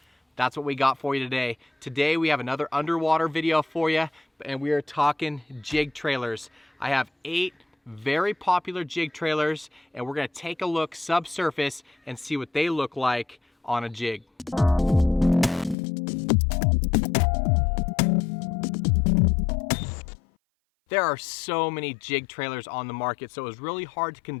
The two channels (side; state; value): right; drops out; at 15.8 s